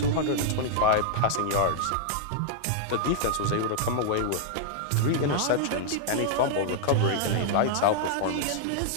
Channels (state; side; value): different; both; correlation -0.01